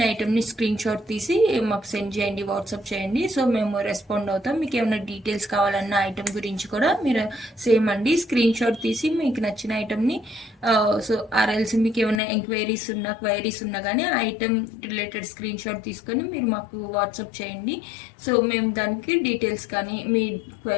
ఐటమ్ని స్క్రీన్ షాట్ తీసి మాకు సెండ్ చేయండి, వాట్సాప్ చేయండి. సో మేము రెస్పాండ్ అవుతాం. మీకు ఏమైనా డీటెయిల్స్ కావాలన్న ఐటమ్ గురించి కూడా మీరు సేమ్ అండి స్క్రీన్ షాట్ తీసి మీకు నచ్చిన ఐటమ్ని సో ఆర్ఎల్స్ మీకు ఏమైనా క్వైరీస్ ఉన్నా కానీ ఆ ఐటమ్ రిలేటెడ్ స్క్రీన్ షాట్ తీసుకొని మీరు మాకు వాట్సాప్ చేయండి. సో మేము దానికి డీటెయిల్స్ కానీ మీ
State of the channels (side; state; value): right; drops out; at 12.2 s